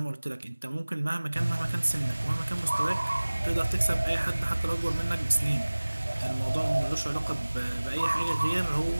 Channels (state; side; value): inverted; both; correlation -1.00